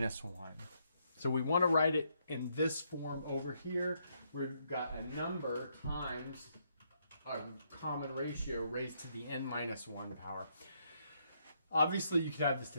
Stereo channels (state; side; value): inverted; both; correlation -0.75